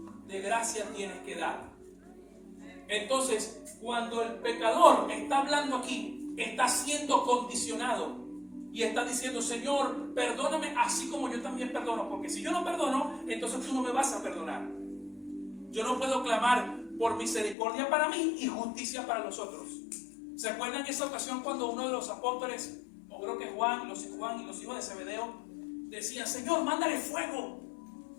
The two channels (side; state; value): right; drops out; at 17.6 s